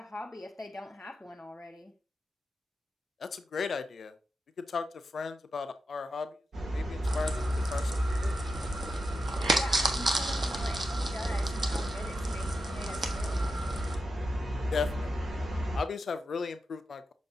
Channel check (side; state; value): both; normal; correlation 0.88